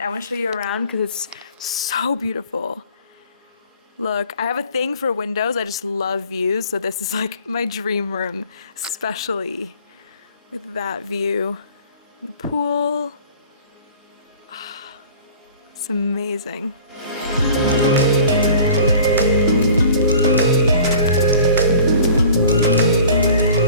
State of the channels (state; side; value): inverted; both; correlation -0.47